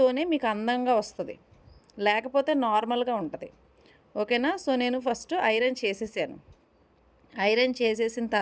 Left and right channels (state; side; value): identical; both; correlation 1.00